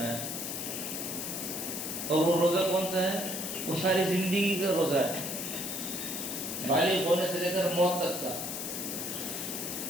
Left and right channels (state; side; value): noise; left; hiss, 4 dB below the sound